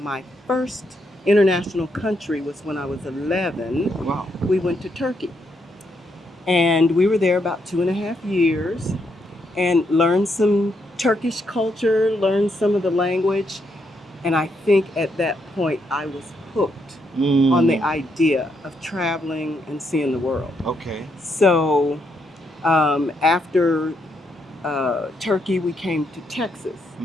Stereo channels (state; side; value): normal; both; correlation 0.78